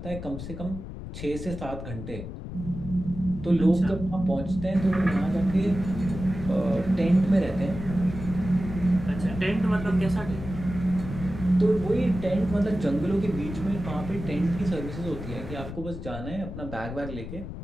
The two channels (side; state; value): left; noise; rumble, 9 dB below the sound